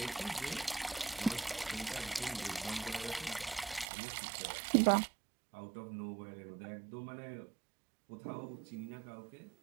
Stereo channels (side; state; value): left; drops out; at 3.9 s